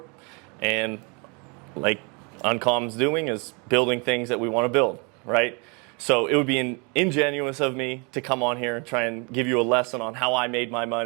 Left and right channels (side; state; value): left; quieter; 32.2 dB